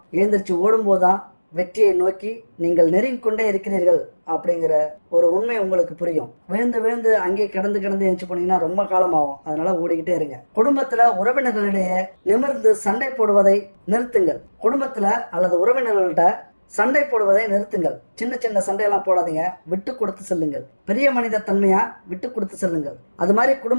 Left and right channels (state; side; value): inverted; both; correlation -1.00